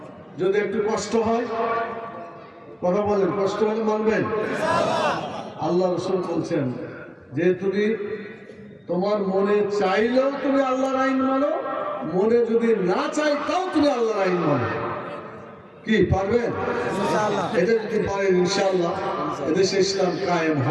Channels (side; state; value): both; identical; correlation 1.00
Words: যদি একটু কষ্ট হয়, কথা বলেন, কষ্ট হলে মানবেন? আল্লাহ রাসূল বলছেন যে তুমি তোমার মনে চাইলেও তুমি আল্লাহর আইন মানো, মনে যদি না চাই তাও তুমি আল্লাহর আইন মানো। কি পারবেন? এটা যদি পারেন ইনশাআল্লাহ এদেশে ইসলাম কায়েম